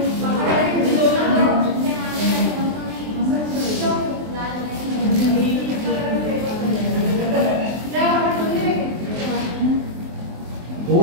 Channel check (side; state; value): left; late; 23 ms